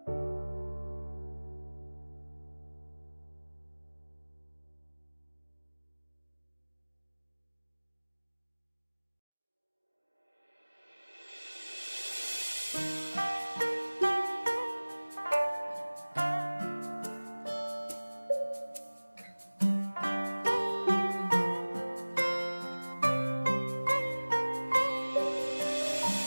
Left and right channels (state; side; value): inverted; both; correlation -1.00